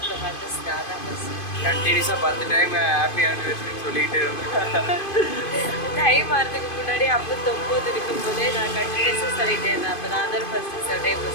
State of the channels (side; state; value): right; late; 2.5 ms